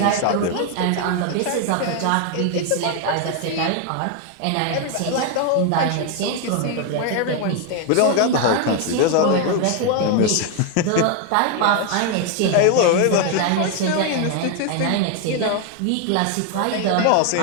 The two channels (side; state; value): both; different; correlation 0.01